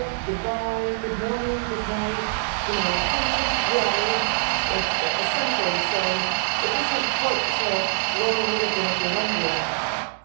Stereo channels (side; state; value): left; silent; digital silence